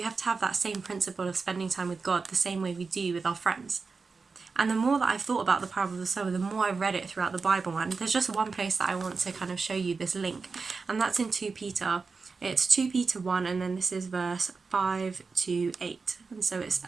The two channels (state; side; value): quieter; left; 4.6 dB